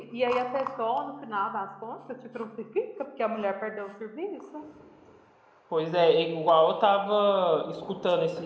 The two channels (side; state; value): both; identical; correlation 1.00